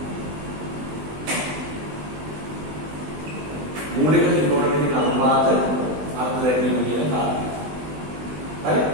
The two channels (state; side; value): late; left; 20 ms